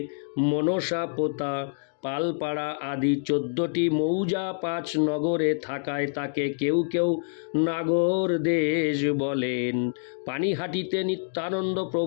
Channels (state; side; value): silent; right; digital silence